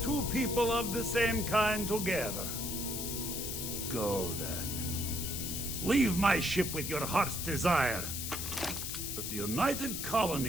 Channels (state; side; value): noise; left; hiss, 4 dB below the sound